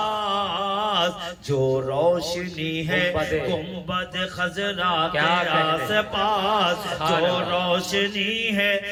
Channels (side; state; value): both; identical; correlation 1.00